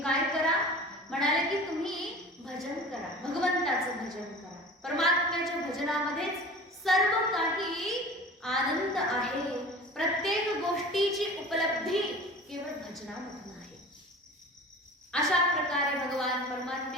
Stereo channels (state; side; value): normal; both; correlation 0.39